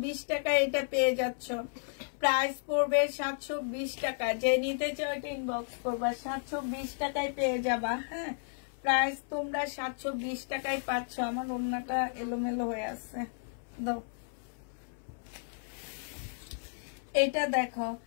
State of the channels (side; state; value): right; silent; 56 dB below the other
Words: টাকা এটা পেয়ে যাচ্ছ। প্রাইস পড়বে 720 টাকা। যে নিতে চাও এটা ইনবক্স করবা। 720 টাকায় পেয়ে যাবা। হ্যাঁ, প্রাইস তোমরা 720 টাকায় পাচ্ছ। আমার ওড়নাটা এলোমেলো হয়ে আছে, দাও। এটা দেখো,